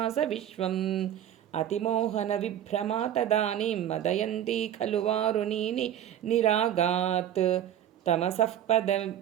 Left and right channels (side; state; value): left; quieter; 10.8 dB